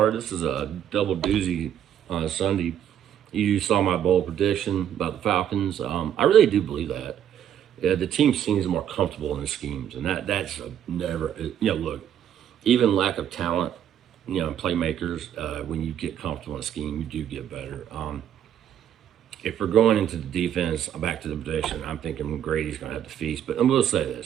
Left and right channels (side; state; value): left; quieter; 9.9 dB